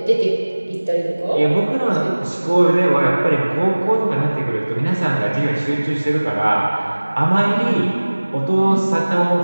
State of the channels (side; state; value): both; inverted; correlation -1.00